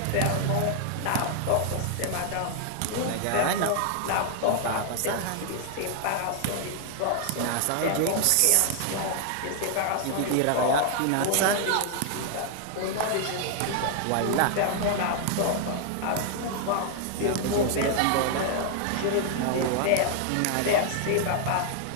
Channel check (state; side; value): different; both; correlation 0.00